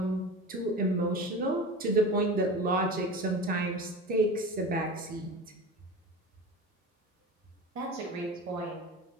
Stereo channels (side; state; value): both; normal; correlation 0.31